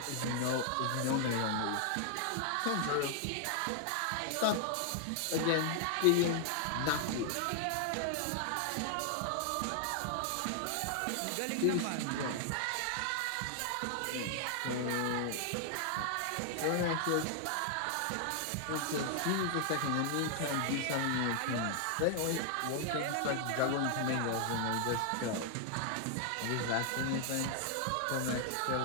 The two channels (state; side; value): different; both; correlation 0.00